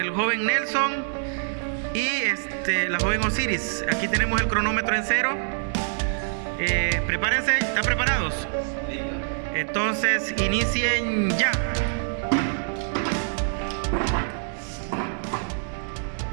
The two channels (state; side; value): silent; left; digital silence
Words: joven Nelson y la joven Osiris. Aquí tenemos el cronómetro en 0. Prepárense, ¿están preparados? Entonces, inicien ya.